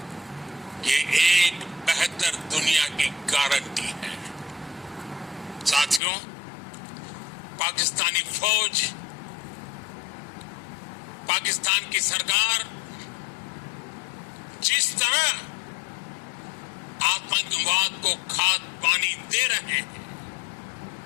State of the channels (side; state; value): right; drops out; at 6.0 s